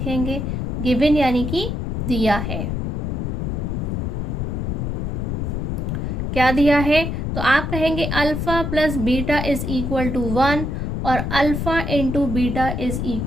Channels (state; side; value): noise; left; rumble, 2 dB below the sound